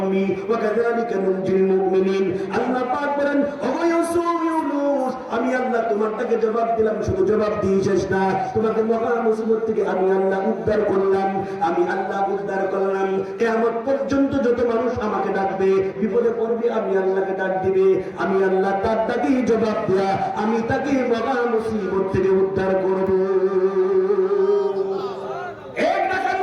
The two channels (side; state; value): both; identical; correlation 1.00